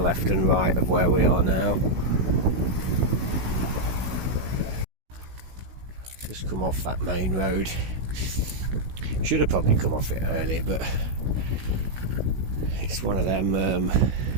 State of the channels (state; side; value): late; left; 16 ms